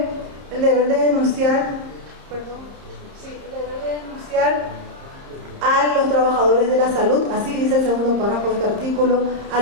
el deber de denunciar, a los trabajadores de la salud, así dice el segundo párrafo de este artículo, a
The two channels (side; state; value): left; late; 30 ms